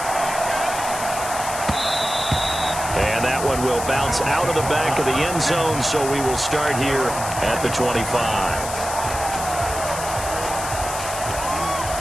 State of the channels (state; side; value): noise; left; hiss, 8 dB below the sound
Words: And that one will bounce out of the back of the end zone, so we will start here at the 25.